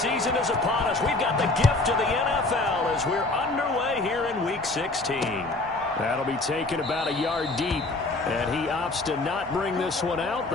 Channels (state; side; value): quieter; right; 3.1 dB